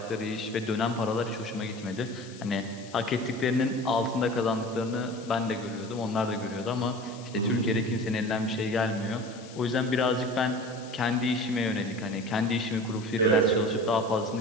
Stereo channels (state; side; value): noise; left; hiss, 19 dB below the sound